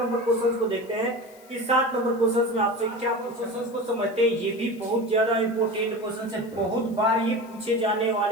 क्वेश्चन को देखते हैं कि 7 नंबर क्वेश्चन में आपसे क्या क्वेश्चन को समझते हैं। ये भी बहुत ज्यादा इंपोर्टेंट क्वेश्चन है, बहुत बार ये पूछे जाने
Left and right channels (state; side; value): noise; left; hiss, 26 dB below the sound